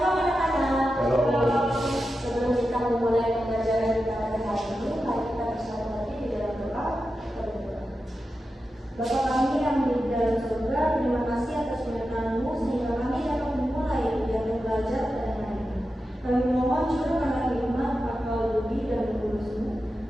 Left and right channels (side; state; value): both; normal; correlation 0.90